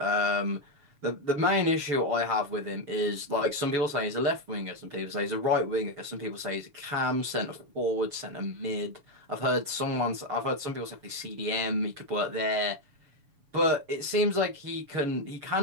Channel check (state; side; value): late; left; 7.1 ms